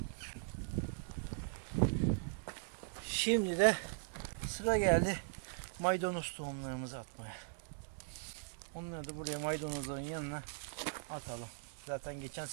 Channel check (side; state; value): left; silent; digital silence